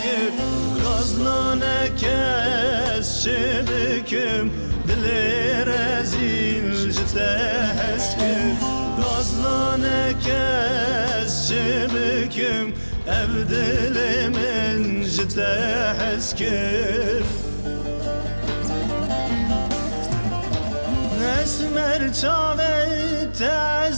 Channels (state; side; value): inverted; both; correlation -1.00